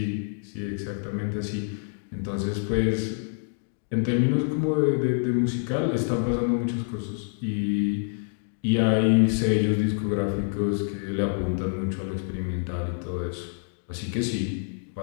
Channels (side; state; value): right; silent; digital silence